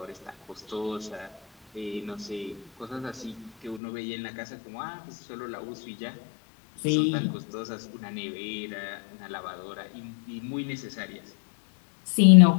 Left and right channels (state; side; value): drops out; right; at 3.8 s